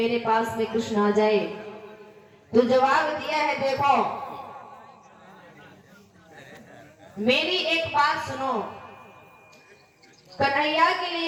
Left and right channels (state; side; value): identical; both; correlation 1.00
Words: पास में कृष्ण आ जाए। तो जवाब दिया है, देखो मेरी एक बात सुनो, कन्हैया के